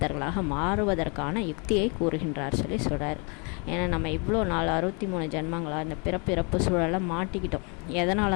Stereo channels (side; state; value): right; quieter; 33.5 dB